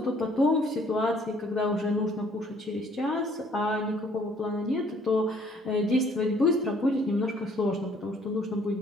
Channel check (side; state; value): both; normal; correlation 0.61